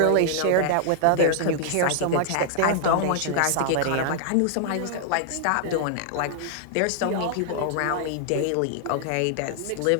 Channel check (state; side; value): different; both; correlation -0.01